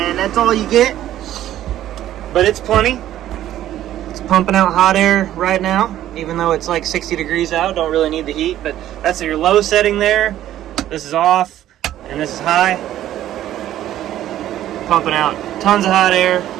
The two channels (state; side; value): quieter; left; 12.6 dB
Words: that's all you get. But it's plenty. It's pumping out hot air right now, even though it's like 60 degrees out. Don't really need the heat, but that's your low setting there. This is off, and this is high. Pumping out tons of hot air.